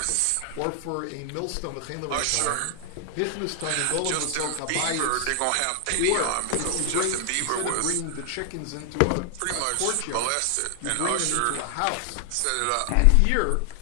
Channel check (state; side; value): different; both; correlation 0.00